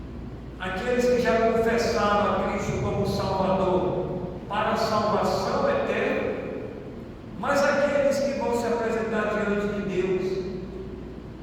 Aqueles que já confessaram a Cristo como Salvador para a salvação eterna, mas aqueles que vão se apresentar diante de Deus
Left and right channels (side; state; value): both; identical; correlation 1.00